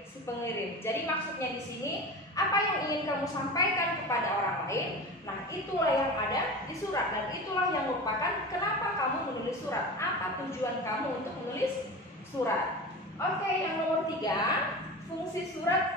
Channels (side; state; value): both; normal; correlation 0.30